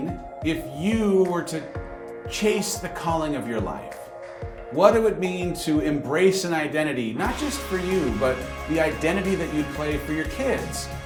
if you were to chase the calling of your life. What it would mean to embrace an identity, not just for you, but the identity that you'd play for your kids,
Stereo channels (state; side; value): identical; both; correlation 1.00